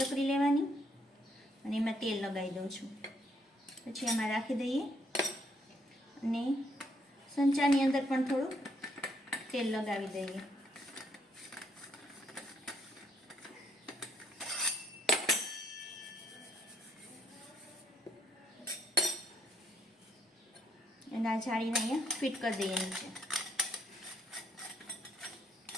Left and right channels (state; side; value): normal; both; correlation 0.70